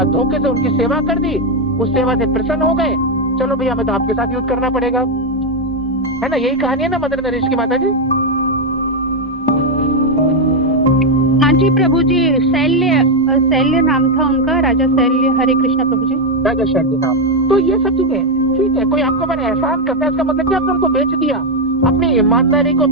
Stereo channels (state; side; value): normal; both; correlation 0.05